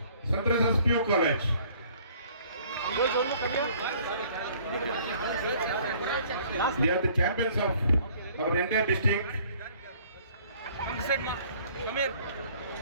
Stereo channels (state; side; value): inverted; both; correlation -0.56